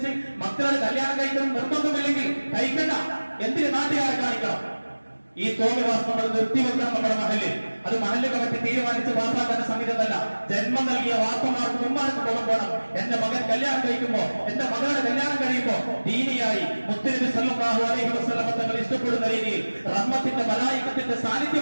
മക്കളുടെ കല്യാണം കഴിക്കണം നിർബന്ധമില്ലെങ്കിൽ കഴിക്കണ്ട. എന്തിന് നാട്ടുകാരെ കാണിക്കണം? ഈ തോന്നിവാസം നമ്മൾ നിർത്തിവെക്കണം നമ്മുടെ മഹലിൽ. അത് മഹലിൽ കമ്മിറ്റി തീരുമാനിച്ച് പാസാക്കുന്ന സംഗീതമല്ല. ജന്മം നൽകിയ വാപ്പമാർക്കും ഉമ്മാർക്കും ബോധം വേണം. എന്റെ മകൻ കല്യാണം കഴിക്കുമ്പോ, എന്റെ മകളുടെ കല്യാണം കഴിയുമ്പോ ദീനിയായി മുത്തുനബി സല്ലല്ലാഹു അലൈഹി വസല്ലം തങ്ങൾ ഇഷ്ടപ്പെടുന്ന രീതിയിൽ, റഹ്മത്തിന്റെ മലായികത്തിന്റെ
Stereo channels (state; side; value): inverted; both; correlation -1.00